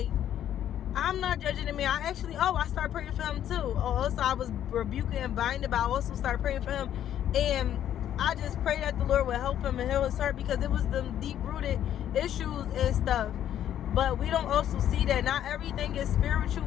I'm not judging the man. I started praying for him too. Also, I was rebuking and binding, but I also started praying for him. And I just prayed that the Lord would help him and heal his heart, because it was them deep-rooted issues and stuff. But we don't also see that not everything is spiritual,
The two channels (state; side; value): quieter; right; 10.8 dB